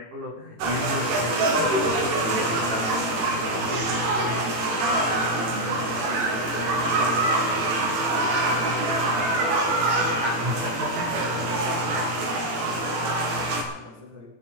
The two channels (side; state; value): left; late; 18 ms